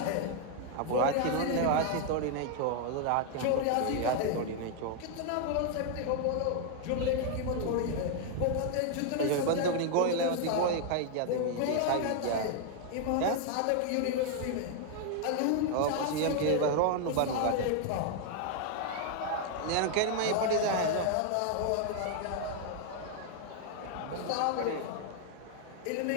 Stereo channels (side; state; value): both; different; correlation 0.00